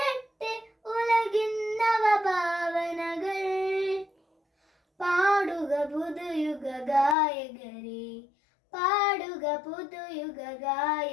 ഉലകിൻ നവഭാവനകൾ. പാടുക പുതുയുഗ ഗായകരെ പാടുക പുതുയുഗ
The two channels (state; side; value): drops out; right; at 7.2 s